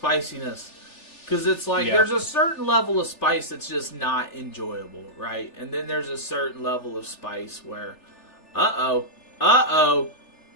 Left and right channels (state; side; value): late; right; 3.4 ms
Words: Because it's like, Yeah. there's a certain level of spice that's just not enjoyable, right? And then there's a certain level of spice where, uh-oh,